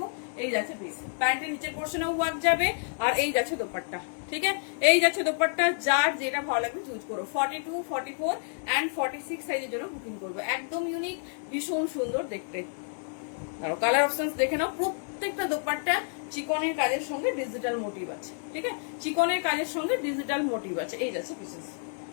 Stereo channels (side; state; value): right; silent; 58 dB below the other